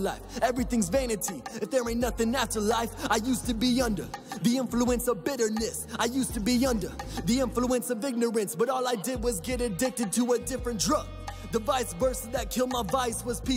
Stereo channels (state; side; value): identical; both; correlation 1.00